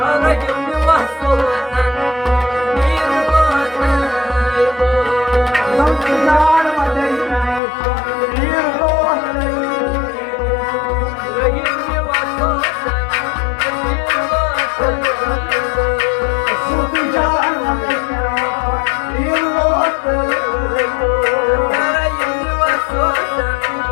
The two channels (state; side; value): drops out; right; at 7.6 s